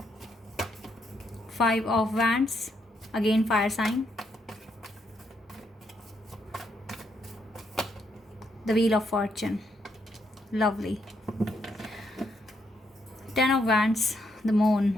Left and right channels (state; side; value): normal; both; correlation 0.76